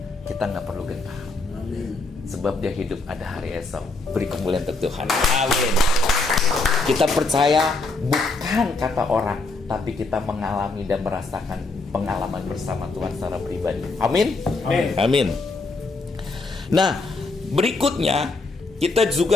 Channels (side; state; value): right; quieter; 3.5 dB